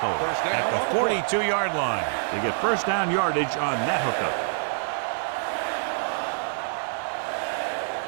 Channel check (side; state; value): left; silent; 61 dB below the other